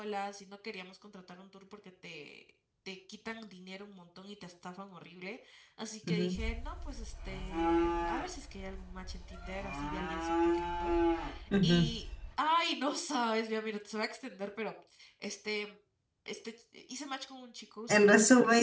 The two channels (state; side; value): identical; both; correlation 1.00